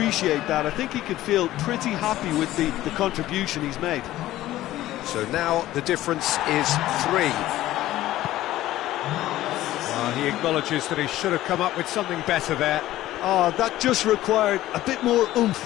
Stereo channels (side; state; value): right; quieter; 15.0 dB